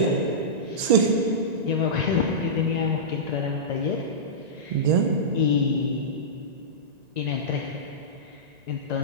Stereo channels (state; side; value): late; left; 1.9 ms